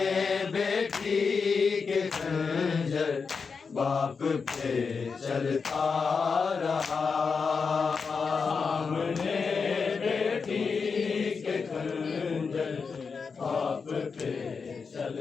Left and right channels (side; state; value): right; quieter; 5.3 dB